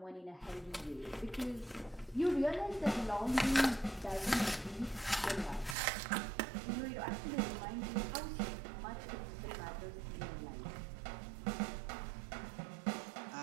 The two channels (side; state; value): left; drops out; at 5.8 s